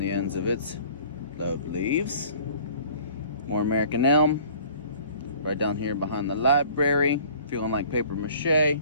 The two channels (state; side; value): inverted; both; correlation -0.51